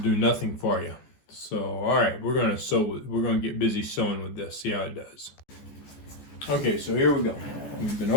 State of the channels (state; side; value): late; right; 14 ms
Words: nothing for you. So, all right, we're gonna get busy sewing with this. See how it does. Okay, so here we go. We've been